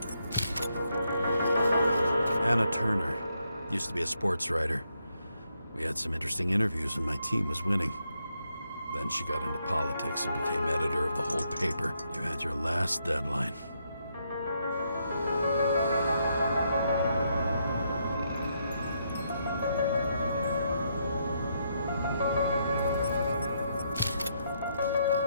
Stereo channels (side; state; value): both; inverted; correlation -0.78